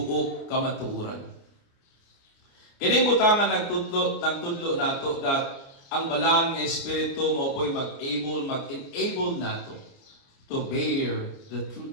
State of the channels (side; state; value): right; late; 29 ms